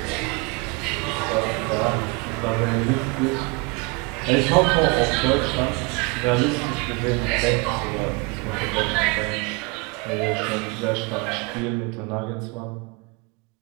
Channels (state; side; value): quieter; left; 28.8 dB